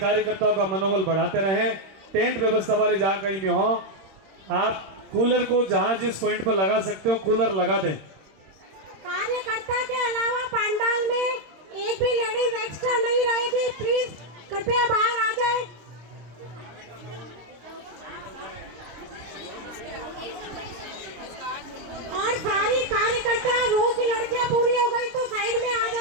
का मनोबल बढ़ाते रहें। टेंट व्यवस्था वाले जहां कहीं में हो, आप कूलर को जहां जिस पॉइंट पर लगा सकते हो कूलर लगा दें। कार्यकर्ता के अलावा पंडाल में एक भी लेडीज एक्स्ट्रा नहीं रहेगी, प्लीज कृपया बाहर आ जाए। और सारी कार्यकर्ता, रो की लड़कियां पूरी हो गई तो साइड में आ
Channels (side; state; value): left; late; 26 ms